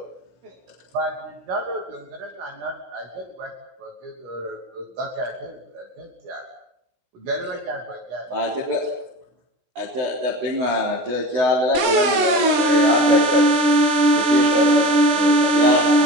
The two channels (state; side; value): late; left; 17 ms